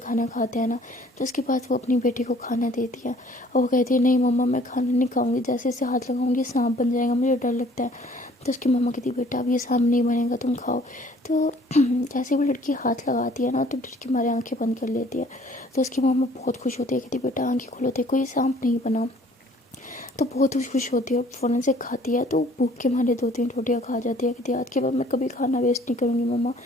खाते हैं ना तो उसके बाद वो अपनी बेटी को खाना देती है और वो कहती है नहीं मम्मा मैं खाना नहीं खाऊंगी, जैसे इसे हाथ लगाऊंगी सांप बन जाएगा, मुझे डर लगता है। तो उसकी मम्मा कहती बेटा अब ये सांप नहीं बनेगा, तुम खाओ। तो जैसे वो लड़की हाथ लगाती है ना तो डर के मारे आंखें बंद कर लेती है। तो उसकी मम्मा बहुत खुश होती है, कहती बेटा आंखें खोलो, देखो ये सांप नहीं बना। तो बहुत खुश होती है और फ़ौरन से खाती है। तो भूख के मारे 2-3 रोटियाँ खा जाती है, कहती है आज के बाद मैं कभी खाना वेस्ट नहीं करूँगी मम्मा,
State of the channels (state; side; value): normal; both; correlation 0.56